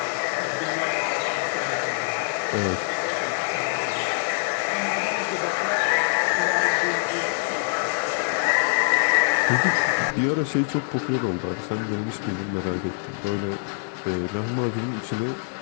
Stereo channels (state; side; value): silent; right; digital silence